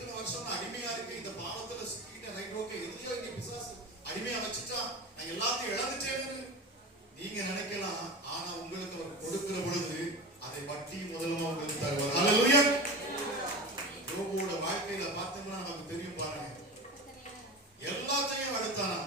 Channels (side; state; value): both; normal; correlation 0.29